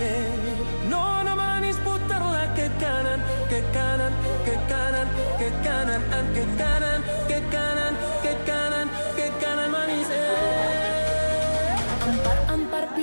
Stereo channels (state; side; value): inverted; both; correlation -1.00